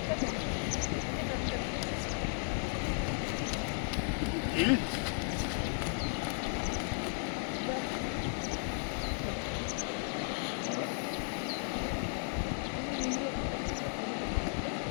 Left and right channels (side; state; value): right; silent; 54 dB below the other